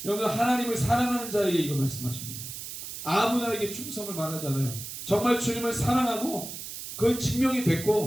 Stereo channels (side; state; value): right; noise; hiss, 9 dB below the sound